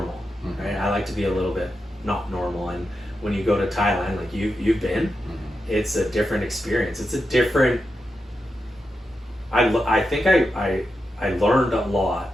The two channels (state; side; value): normal; both; correlation 0.88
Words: right? I like to be a little bit not normal, and when you go to Thailand, like you've been, it's a different experience. It's a different. I think I learned a lot